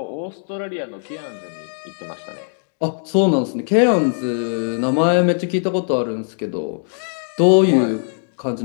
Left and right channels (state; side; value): silent; right; digital silence